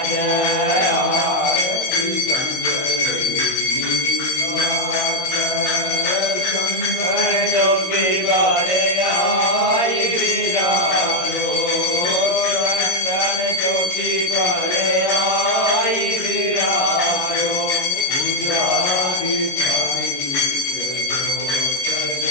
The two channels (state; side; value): late; right; 22 ms